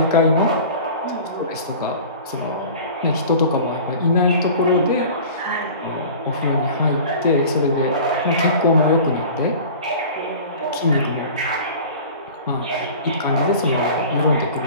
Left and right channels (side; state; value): both; inverted; correlation -0.40